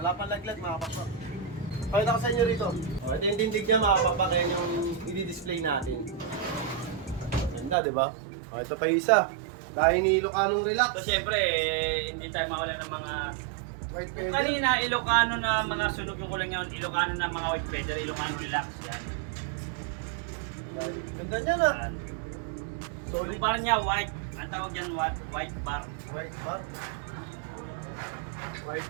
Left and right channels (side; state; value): left; drops out; at 7.8 s